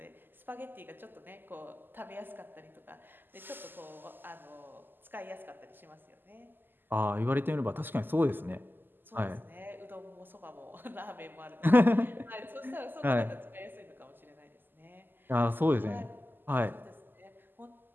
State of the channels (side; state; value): left; late; 0.093 ms